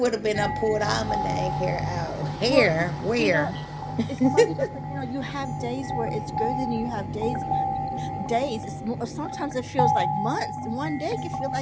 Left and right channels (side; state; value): both; identical; correlation 1.00